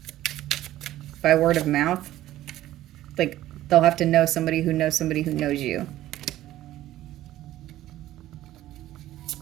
by word of mouth. Like they'll have to know somebody who knows somebody who knows you.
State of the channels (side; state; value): left; quieter; 14.3 dB